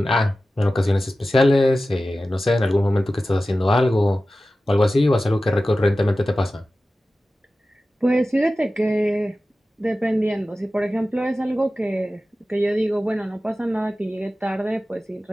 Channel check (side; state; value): both; normal; correlation 0.95